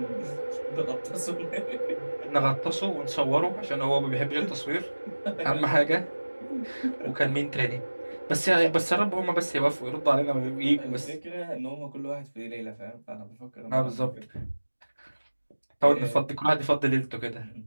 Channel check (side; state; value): both; inverted; correlation -1.00